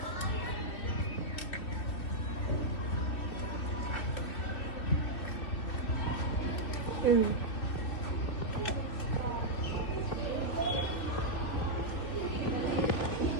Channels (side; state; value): right; late; 3.0 ms